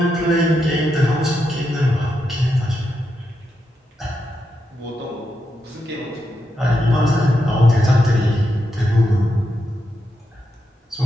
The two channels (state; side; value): normal; both; correlation 0.84